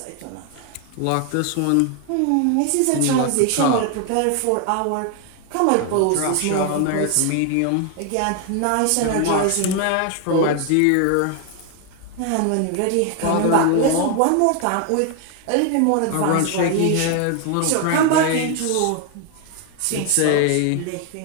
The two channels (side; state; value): both; different; correlation 0.01